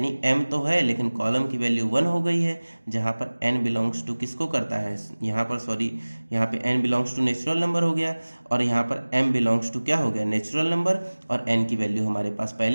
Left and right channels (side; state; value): both; inverted; correlation -1.00